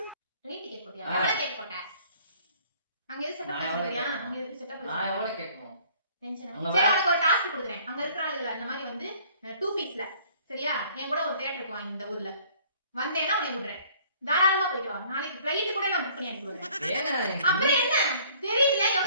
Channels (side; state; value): both; inverted; correlation -0.56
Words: ட்ரெயின் டிக்கெட் போட்டியா? எவ்வளவு கேட் போட்ட? அங்க எது செட்டப் பண்ணியா? அங்க எது செட்டப் நான் எவ்வளவு கேட்கணும்? டென்ஷன். சரி உனக்கு ஒரு டாஸ்க் கொடுக்குறேன். அங்க இருக்கிற ஆளுகளை அந்த மாதிரி வந்து 2 பீஸ்ல சரியா? என் கூட ஒரு தியேட்டருக்கு வாங்க இந்த ஊர்ல. வந்தேன்னா உன்னை விடுறேன். தாராளமா போயிட்டு வா. நாளைக்கு ஃளைட் கூட நான் புக் பண்ணி அனுப்பி விடுறேன். அப்புறம் என்ன? தெரியல